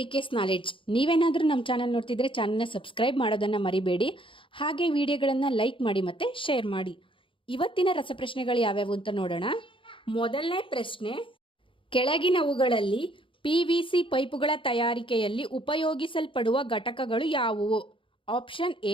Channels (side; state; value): right; late; 0.25 ms